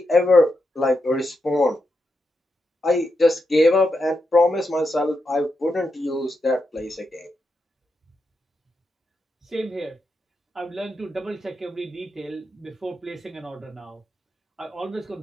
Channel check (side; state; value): both; normal; correlation 0.85